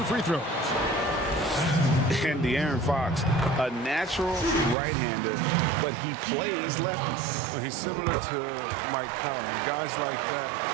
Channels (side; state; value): left; drops out; at 4.8 s